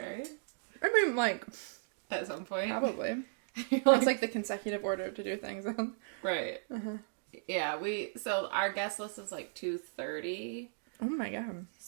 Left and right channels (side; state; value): left; silent; digital silence